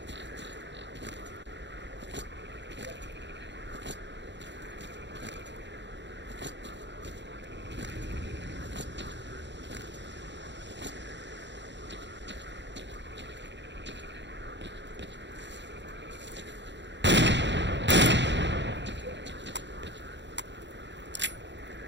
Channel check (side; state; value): left; late; 0.52 ms